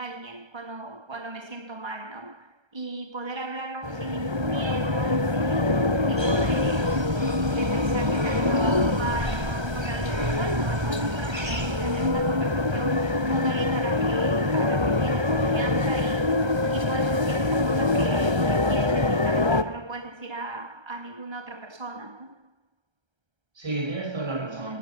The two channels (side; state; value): left; late; 1.3 ms